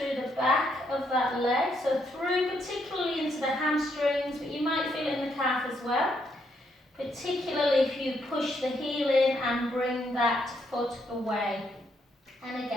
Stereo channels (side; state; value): both; normal; correlation 0.75